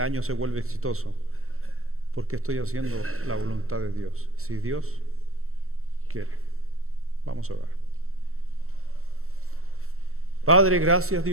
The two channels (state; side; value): late; left; 0.63 ms